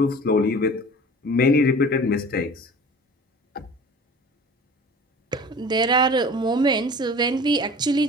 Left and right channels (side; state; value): both; normal; correlation 0.42